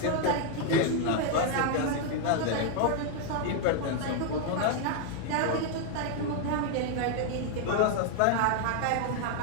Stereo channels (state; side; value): different; both; correlation 0.00